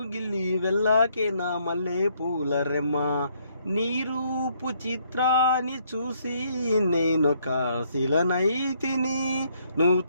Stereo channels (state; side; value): inverted; both; correlation -0.69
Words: గిల్లి వెళ్ళాకే నా మల్లె పూల రెమ్మ. నీ రూపు చిత్రాన్ని చూసి నేనొక శిలనైతిని. నువ్వు